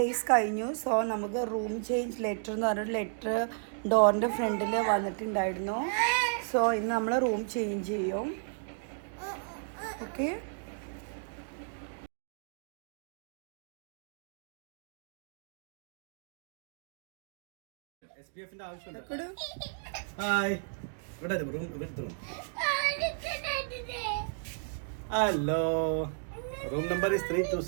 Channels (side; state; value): left; silent; digital silence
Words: കഴിഞ്ഞു. സോ നമുക്ക് room change letter എന്ന് പറഞ്ഞൊരു ലെറ്റർ ഡോറിൻ്റെ ഫ്രണ്ടിൽ വന്നിട്ടുണ്ടായിരുന്നു. സോ ഇന്ന് നമ്മൾ റൂം ചേഞ്ച് ചെയ്യും. Okay. Hi, hello. Room number